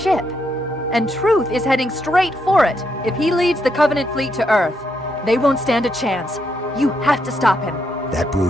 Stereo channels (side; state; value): both; normal; correlation 0.78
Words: And Truth is heading straight for it. If he leads the Covenant fleet to Earth, they won't stand a chance. You have to stop him. That